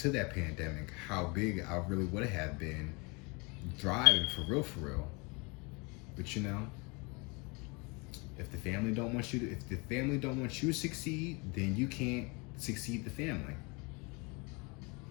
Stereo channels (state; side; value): quieter; right; 29.1 dB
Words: that pandemic, how big I really would have been thriving for real. But if the family don't want you to succeed, then you can't succeed the family.